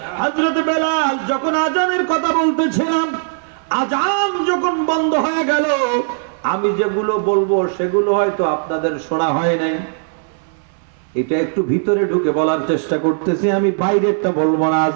হযরত বেলাল যখন আজানের কথা বলতেছিলাম, আজান যখন বন্ধ হয়ে গেল, আমি যেগুলো বলবো সেগুলো হয়তো আপনাদের শোনা হয় নাই। এটা একটু ভিতরে ঢুকে বলার চেষ্টা করতেছি, আমি বাইরেরটা বলবো না,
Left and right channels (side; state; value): left; silent; 67 dB below the other